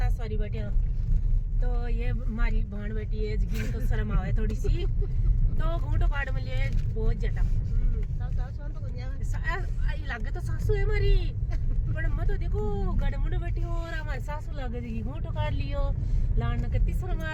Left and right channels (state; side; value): identical; both; correlation 1.00